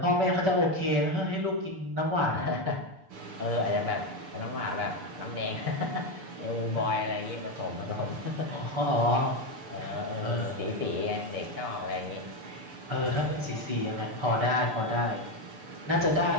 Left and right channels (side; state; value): left; late; 6.8 ms